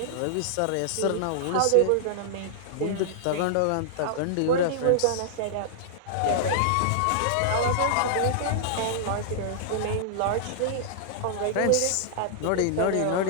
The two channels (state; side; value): different; both; correlation -0.01